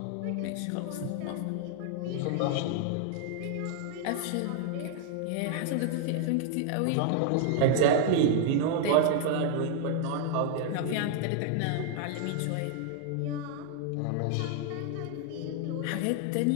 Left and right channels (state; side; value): different; both; correlation 0.00